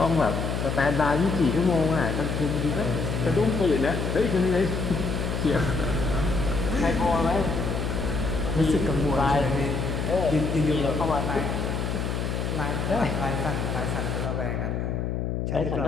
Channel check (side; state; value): left; noise; hum, 1 dB below the sound